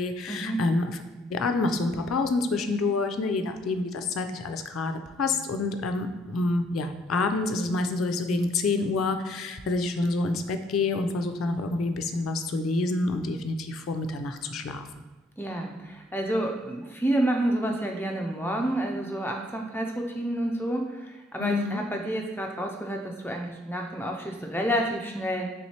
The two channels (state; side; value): normal; both; correlation 0.66